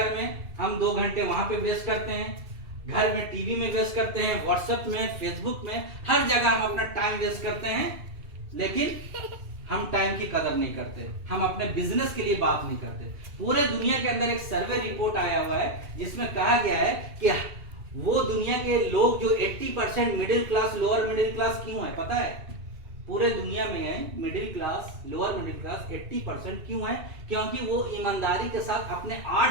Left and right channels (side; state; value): left; late; 2.7 ms